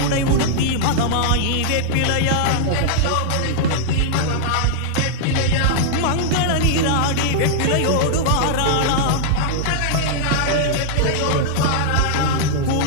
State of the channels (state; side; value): different; both; correlation -0.01